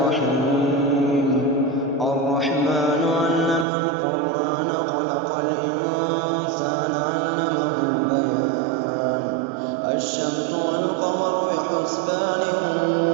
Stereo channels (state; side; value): drops out; left; at 3.7 s